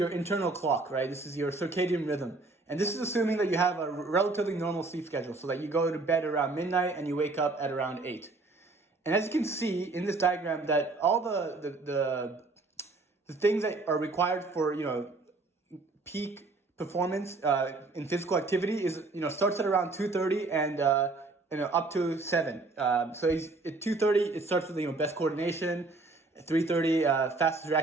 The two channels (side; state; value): left; quieter; 3.4 dB